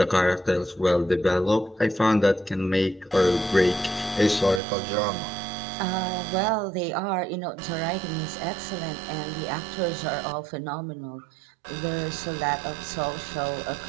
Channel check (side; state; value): left; drops out; at 4.6 s